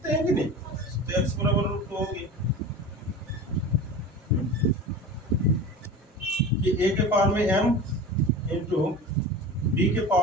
हैं कि नहीं? तो x बराबर √2 होगी कि a के पावर में m इंटू b के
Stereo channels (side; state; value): both; normal; correlation 0.33